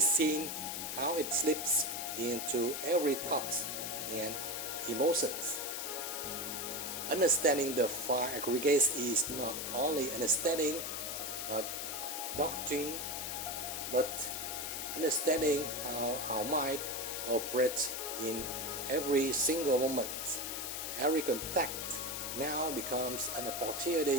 how it slips into every thought and emotions. Understanding the 5 aggregates is not only understanding a doctrine, but understanding how our mind operates in every single moment. Every contact now becomes an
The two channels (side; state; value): left; noise; hiss, 4 dB below the sound